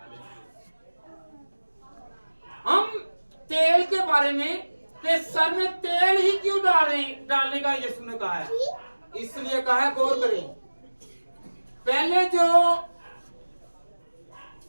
हम तेल के बारे में कि सर में तेल ही क्यों डालने का यीशु ने कहा है, इसलिए कहा है, गौर करें। पहले जो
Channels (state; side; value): inverted; both; correlation -1.00